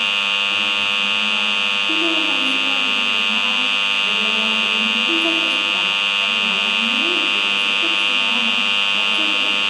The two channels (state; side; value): identical; both; correlation 1.00